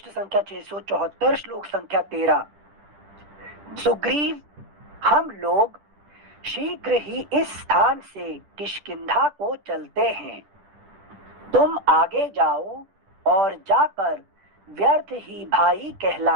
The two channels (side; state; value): left; late; 10 ms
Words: संख्या 674, श्लोक संख्या 13। सुग्रीव, हम लोग शीघ्र ही इस स्थान से किष्किंधा को चलते हैं। तुम आगे जाओ और जाकर व्यर्थ ही भाई